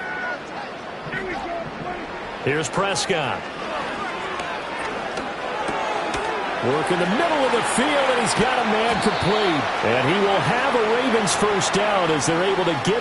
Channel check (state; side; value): identical; both; correlation 1.00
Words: Here's Prescott. Work in the middle of the field, and he's got a man complete. And he will have a Ravens first down as they're able to